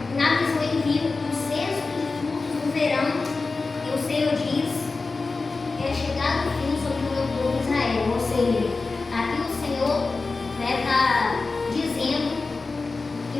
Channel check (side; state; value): right; quieter; 3.9 dB